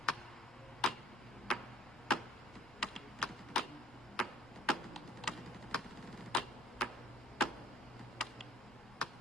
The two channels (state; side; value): noise; left; rumble, 24 dB below the sound